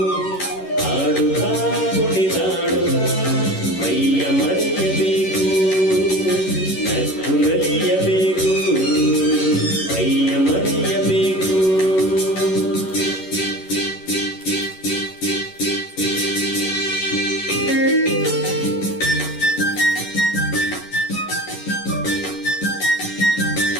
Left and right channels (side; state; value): right; late; 11 ms